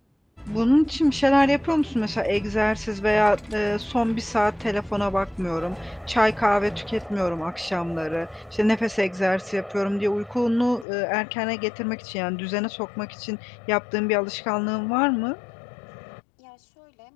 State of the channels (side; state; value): right; drops out; at 10.9 s